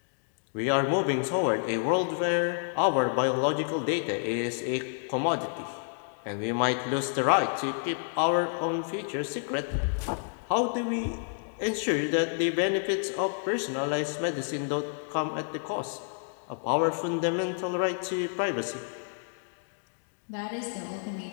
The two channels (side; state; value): right; silent; digital silence